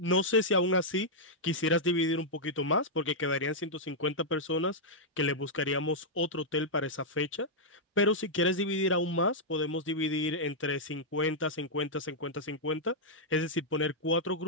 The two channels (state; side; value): normal; both; correlation -0.06